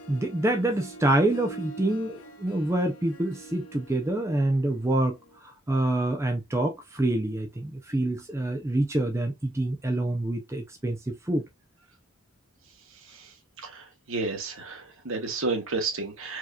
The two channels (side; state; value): both; normal; correlation 0.74